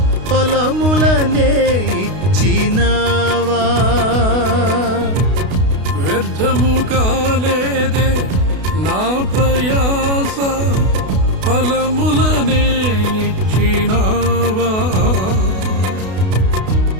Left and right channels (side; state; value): left; late; 32 ms